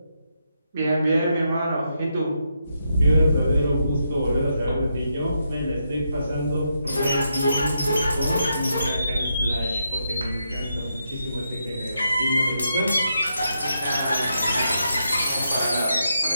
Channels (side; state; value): both; inverted; correlation -0.82